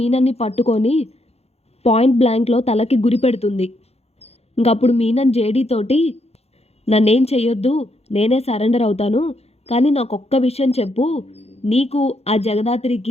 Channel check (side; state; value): right; late; 0.30 ms